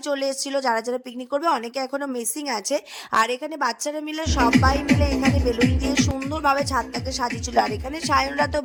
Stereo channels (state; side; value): identical; both; correlation 1.00